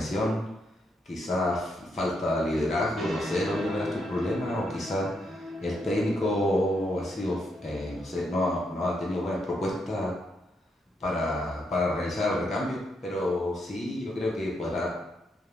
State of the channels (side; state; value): both; normal; correlation 0.79